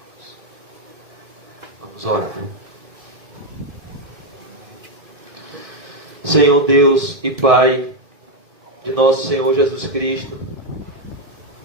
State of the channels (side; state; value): left; late; 1.7 ms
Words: Vamos orar. Senhor Deus e Pai de nosso Senhor Jesus Cristo,